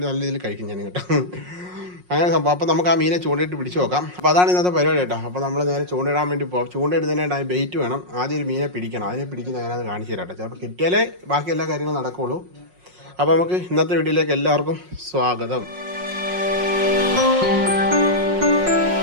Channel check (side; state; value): left; late; 5.5 ms